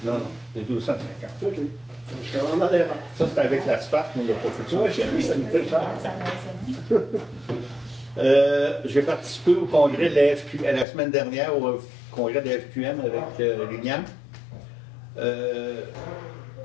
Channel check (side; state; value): right; drops out; at 10.9 s